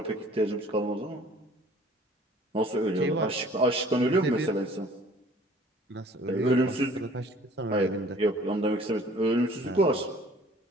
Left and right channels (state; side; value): normal; both; correlation 0.52